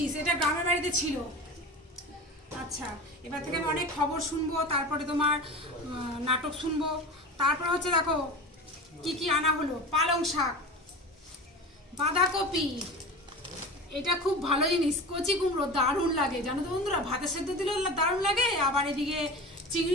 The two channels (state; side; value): normal; both; correlation 0.31